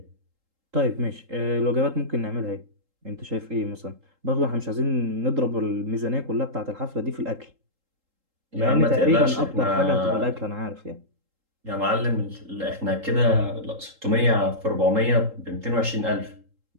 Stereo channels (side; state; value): left; late; 3.8 ms